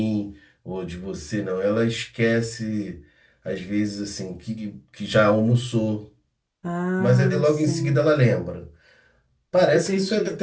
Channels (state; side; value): identical; both; correlation 1.00